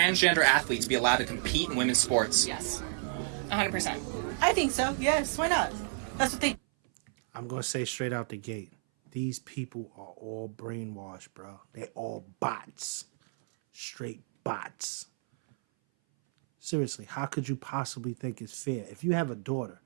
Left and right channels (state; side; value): silent; left; 57 dB below the other